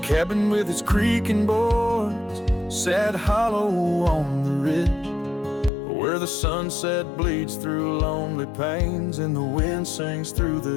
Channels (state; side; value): drops out; right; at 5.7 s